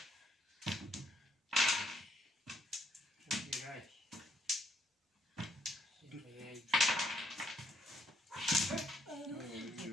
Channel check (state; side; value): normal; both; correlation 0.72